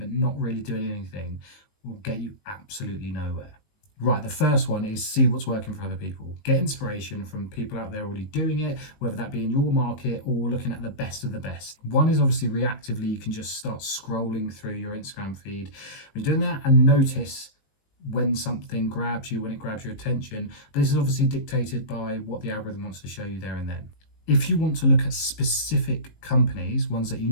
not really doing anything, will get you absolutely nowhere. Right, the first one is see what's working for other people. Get inspiration from people out there already doing it, whether that be in your market or looking at the best of the best. One is obviously reactively, you can just start scrolling through your Instagram feed. When you're doing that, and notice when something grabs you, when it grabs your attention. But this is obviously dictated by what the algorithm wants to show you there and then. If you want to look at specific companies, ones that you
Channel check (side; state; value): right; late; 19 ms